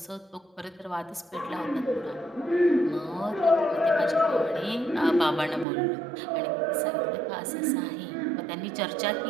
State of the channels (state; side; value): drops out; left; at 5.7 s